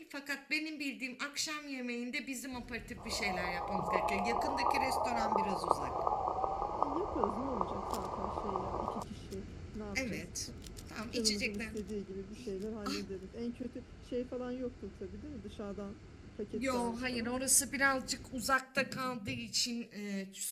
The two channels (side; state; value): both; identical; correlation 1.00